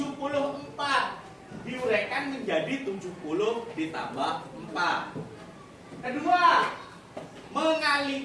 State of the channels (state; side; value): identical; both; correlation 1.00